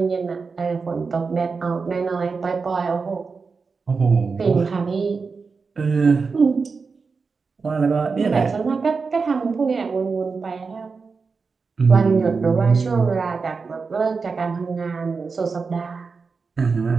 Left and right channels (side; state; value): left; quieter; 4.8 dB